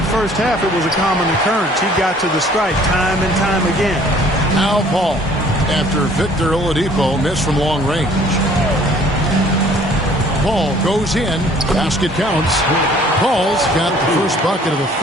first half, it was a common occurrence. He got to the stripe time and time again. Now Paul, after Victor Oladipo missed from long range. Paul goes in. Basket counts. Paul's got the first bucket of the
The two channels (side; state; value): both; normal; correlation 0.55